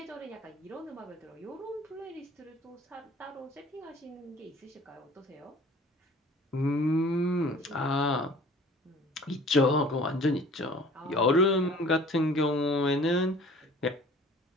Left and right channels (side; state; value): both; normal; correlation 0.49